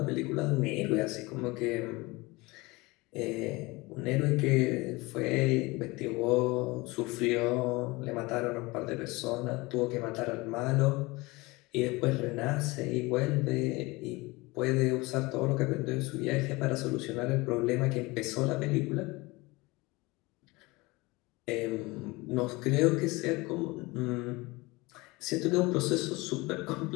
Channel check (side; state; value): right; quieter; 23.1 dB